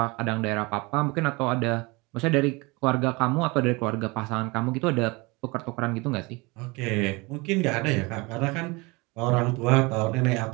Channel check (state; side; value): quieter; left; 25.6 dB